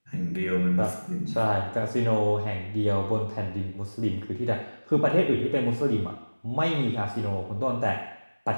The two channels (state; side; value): inverted; both; correlation -1.00